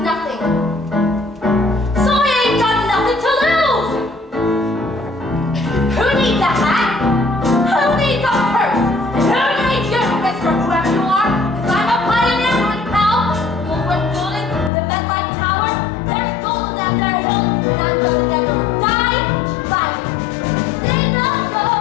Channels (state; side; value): drops out; right; at 14.7 s